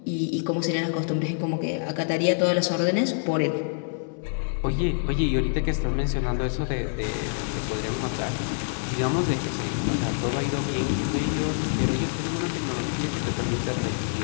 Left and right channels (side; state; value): right; silent; digital silence